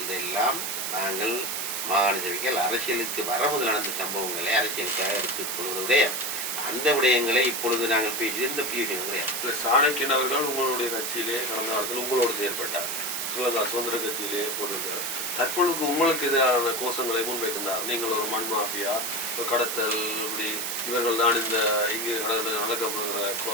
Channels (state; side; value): noise; right; hiss, 2 dB below the sound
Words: இதெல்லாம் நாங்கள் மாகாண சபைகள் அரசியலுக்கு வரமுதல் நடந்த சம்பவங்களை அரசியலுக்காக எடுத்துக்கொள்வதுடைய அந்த விடயங்களை இப்பொழுது நாங்கள் பேசி எந்த பிரயோஜனம் கிடையாது. சாணக்கியன் அவர்கள் உங்களுடைய கட்சியிலே கடந்த காலத்தில் உங்களோடு செயல்பட்டார், ஸ்ரீலங்கா சுதந்திர கட்சியிலே போட்டிருக்கிறார். தற்பொழுது உங்களுக்கு எதிரான கோஷங்களை முன்வைக்கின்றார். நீங்கள் ஒரு மண் மாஃபியா, கடத்தல், இப்படி இவர்கள் தான் இந்த இங்கு